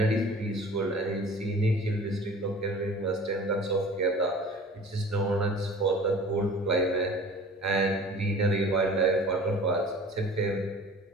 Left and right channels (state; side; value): normal; both; correlation 0.44